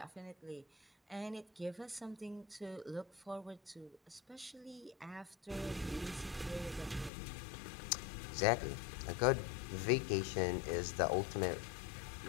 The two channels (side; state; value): right; drops out; at 7.1 s